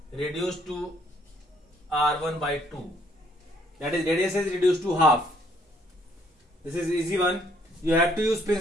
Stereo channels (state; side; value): normal; both; correlation 0.66